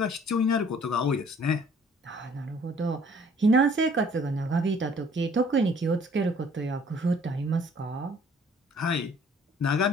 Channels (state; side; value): normal; both; correlation 0.56